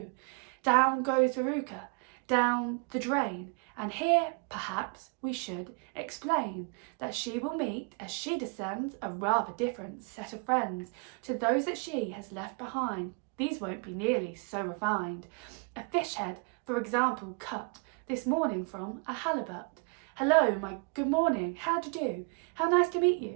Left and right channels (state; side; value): quieter; left; 34.1 dB